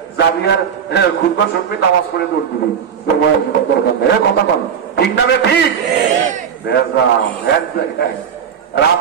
যাবি আর খুদবা শুনবি নামাজ পড়ে দৌড় দিবি দরকার নেই কথা বল ঠিক না ঠিক এক জায়গায়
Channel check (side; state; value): left; quieter; 7.7 dB